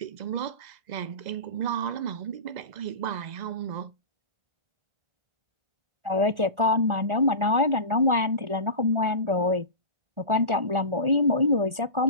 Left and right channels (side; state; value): left; late; 1.4 ms